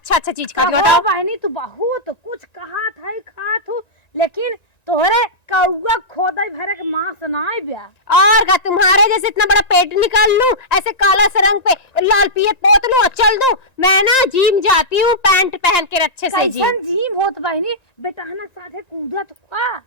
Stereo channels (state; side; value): late; right; 1.9 ms